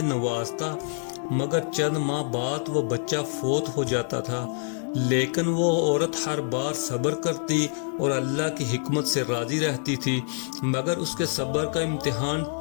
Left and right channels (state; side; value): silent; right; digital silence